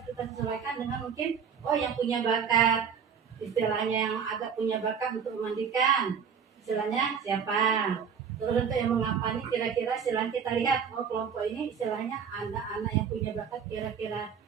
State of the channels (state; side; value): quieter; left; 7.0 dB